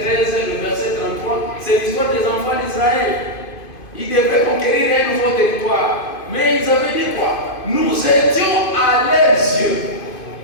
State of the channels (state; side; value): late; right; 2.5 ms